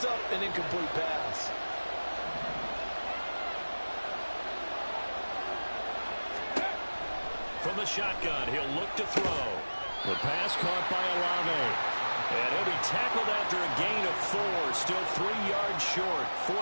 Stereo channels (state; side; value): inverted; both; correlation -1.00